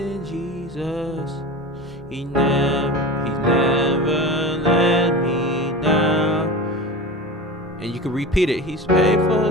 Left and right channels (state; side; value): normal; both; correlation 0.31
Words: Jesus. He never let me down. And you can repeat it. He's